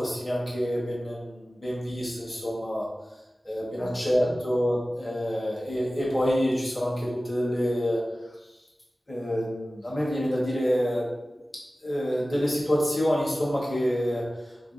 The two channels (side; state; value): both; normal; correlation 0.96